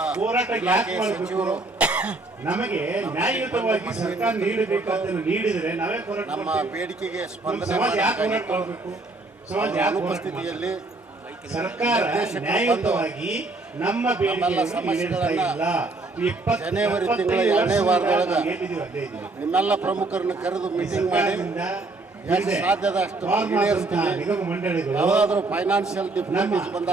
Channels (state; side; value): quieter; left; 3.2 dB